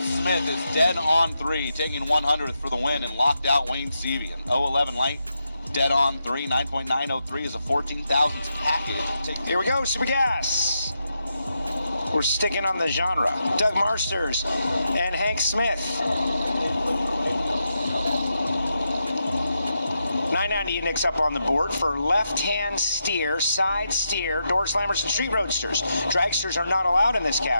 is dead on 3, taking 100th for the win and locked out Wayne Seavey. An 011 light, dead on 3, 9.903 is a 14,000th package. Here we go, Super Gas. We're sticking on the genre. Doug Marsters and Hank Smith. 990 index up on the board for left-hand steer, side steer, door slammers, and street roadsters. Dragsters are not allowed in this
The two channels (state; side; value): inverted; both; correlation -0.84